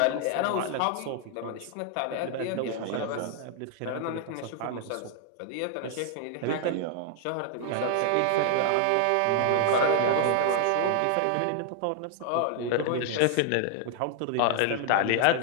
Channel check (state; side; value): different; both; correlation 0.00